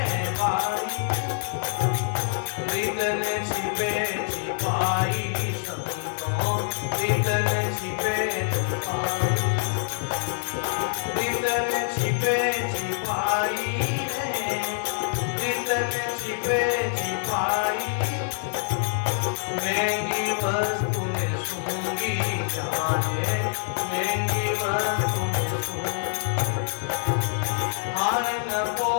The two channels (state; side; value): silent; right; 56 dB below the other